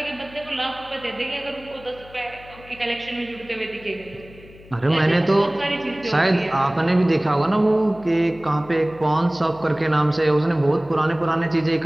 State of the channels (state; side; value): noise; left; hum, 22 dB below the sound